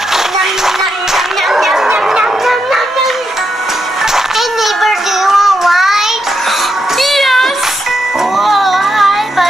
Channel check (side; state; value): both; normal; correlation 0.83